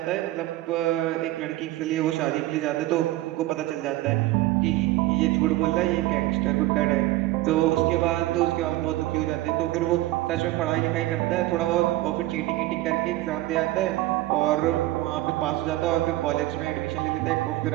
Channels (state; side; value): quieter; left; 17.0 dB